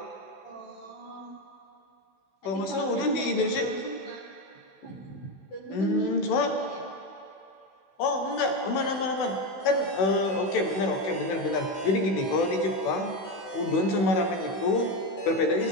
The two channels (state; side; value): late; right; 16 ms